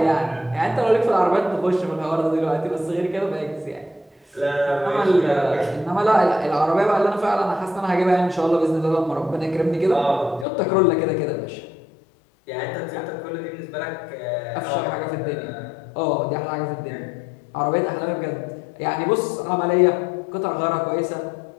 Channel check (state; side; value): drops out; right; at 10.5 s